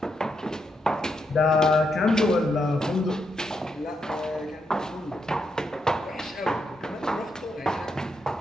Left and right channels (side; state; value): both; normal; correlation 0.81